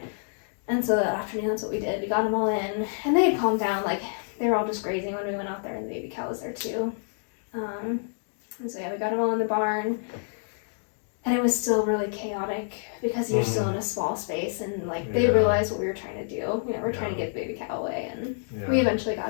And so that afternoon, that's what we did. We got them all in, and they had calmed down. Like, they were all just grazing when we went out there, and the baby cow was there too. And so yeah, we got them all in the barn, and it was still really chaotic because you're still in a small space, and like they realized what we were trying to do. We're trying to get the baby cow away, and we eventually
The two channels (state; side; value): silent; right; digital silence